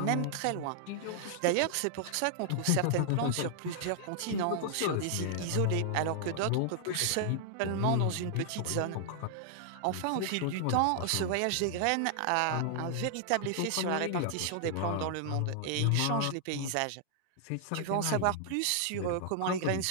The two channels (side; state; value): both; different; correlation 0.00